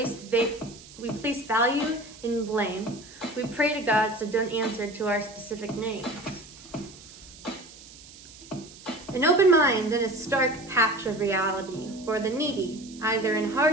value in blame. We pray to gods that don't answer to our specific names. An open mind in a stark patch of reality for the needy, either in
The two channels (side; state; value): right; noise; hiss, 19 dB below the sound